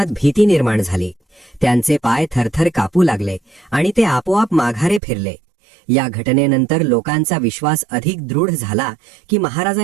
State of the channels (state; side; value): drops out; left; at 5.0 s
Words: भीती निर्माण झाली. त्यांचे पाय थरथर कापू लागले आणि ते आपोआप माघारे फिरले. या घटनेनंतर लोकांचा विश्वास अधिक दृढ झाला की